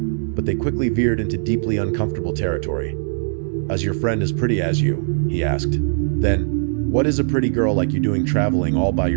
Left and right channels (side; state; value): left; silent; digital silence